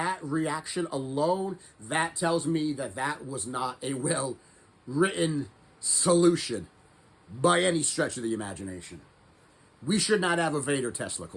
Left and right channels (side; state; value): both; identical; correlation 1.00